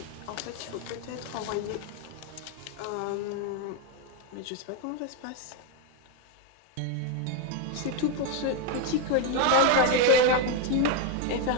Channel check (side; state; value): both; different; correlation 0.02